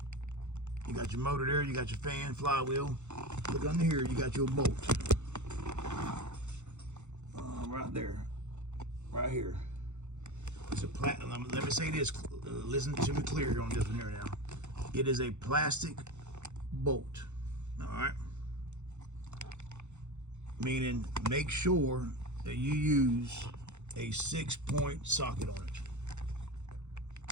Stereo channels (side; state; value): left; late; 0.83 ms